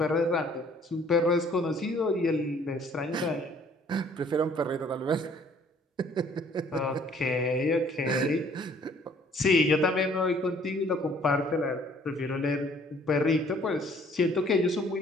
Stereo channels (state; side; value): normal; both; correlation 0.58